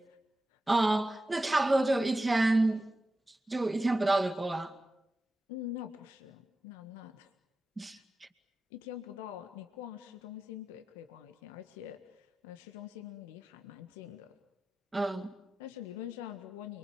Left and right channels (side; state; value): both; normal; correlation 0.93